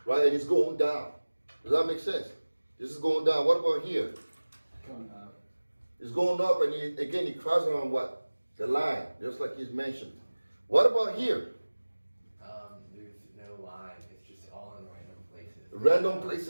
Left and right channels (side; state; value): both; inverted; correlation -1.00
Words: right? And it's going down. Does that make sense? This is going down. What about here? Going up. It's going up, and it crosses around what? The line, just like he's mentioned. What about here? There's no line. It's just all in random places. Random